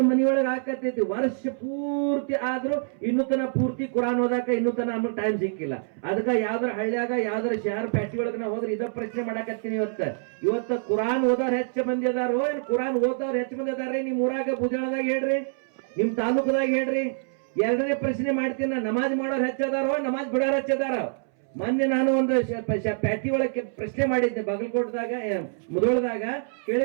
ಮನಿಯೊಳಗೆ ಹಾಕತೈತಿ. ವರ್ಷ ಪೂರ್ತಿ ಆದ್ರೂ ಇನ್ನೂ ತನ ಪೂರ್ತಿ ಕುರಾನ್ ಓದಾಕ ಇನ್ನೂ ತನ ನಮ್ಗೆ ಟೈಮ್ ಸಿಕ್ಕಿಲ್ಲ. ಅದಕ್ಕ ಯಾವ್ದಾರ ಹಳ್ಳಿಯಾಗ ಯಾವ್ದಾರ ಶಹರ್ ಪ್ಯಾಟಿ ಒಳಗ ನಾ ಹೋದ್ರೆ ಇದ ಪ್ರಶ್ನೆ ಮಾಡಾಕತ್ತೀನಿ. ಇವತ್ತ ಕುರಾನ್ ಓದೋರ್ ಹೆಚ್ಚು ಮಂದಿ ಅದಾರೋ ಏನ್ ಕುರಾನ್ ಓದೋರ್ ಹೆಚ್ಚು ಮಂದಿ ಅದಾರ್ರಿ? ನಿಮ್ ಊರಾಗ ಬುಜಾಳದಾಗ ಹೇಳ್ರಿ, ನಿಮ್ ತಾಲೂಕದಾಗ ಹೇಳ್ರಿ. ಎರಡನೇ ಪ್ರಶ್ನೆ ಮಾಡ್ತೀನಿ, ನಮಾಜ್ ಮಾಡೋರ್ ಹೆಚ್ಚದಾರೋ ನಮಾಜ್ ಬಿಡೋರ್ ಹೆಚ್ಚದಾರ? ಮೊನ್ನೆ ನಾನು ಒಂದು ಪ್ಯಾಟಿ ಒಳಗೆ ಪ್ರಶ್ನೆ ಮಾಡಿದ್ದೆ, ಬಾಗಲಕೋಟದಾಗ ಮುದೋಳದಾಗ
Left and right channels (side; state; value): left; silent; 61 dB below the other